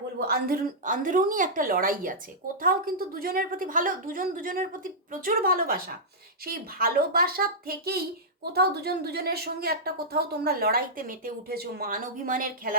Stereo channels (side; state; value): both; normal; correlation -0.12